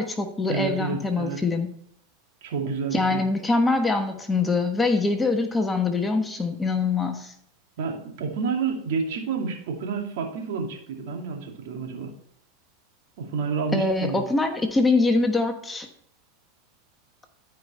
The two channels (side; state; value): both; normal; correlation 0.53